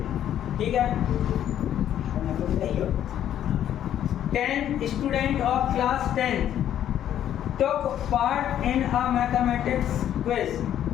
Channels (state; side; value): quieter; right; 10.7 dB